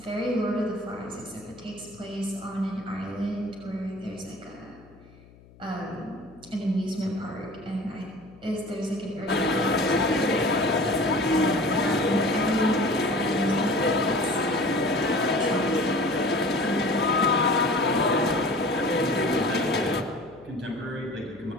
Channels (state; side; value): noise; left; hum, 24 dB below the sound